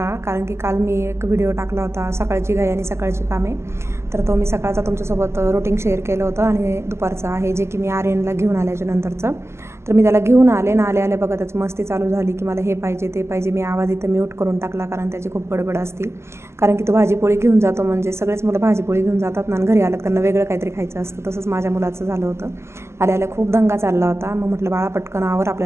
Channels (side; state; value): left; late; 0.13 ms